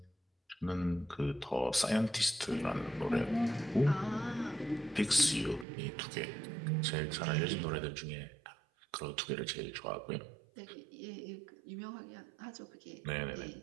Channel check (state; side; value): drops out; left; at 5.7 s